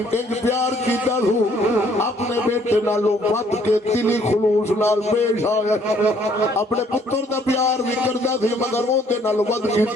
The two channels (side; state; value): both; normal; correlation 0.63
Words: ایک پیار کیتا ہو اپنے بیٹے نالوں ود کے دلی خلوص نال پیش آیا اپنے پتر دا پیار بھی کردا سی مگر وہ دے نال ود